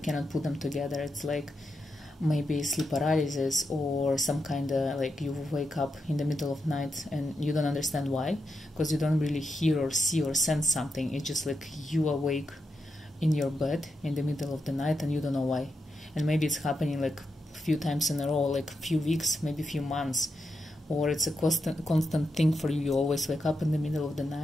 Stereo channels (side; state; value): both; normal; correlation 0.86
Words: put them together. It's like maybe sleep paralysis, or some kind of like you wake up in the middle of night and you don't understand why, because you don't really hear or see or sense something. It's just like you awake in your bed in the middle of the night and you don't know why. And maybe it's happening like a few times in a row, like a few weeks, maybe a few months. Or it's a constant thing for you. You always wake up in the middle of the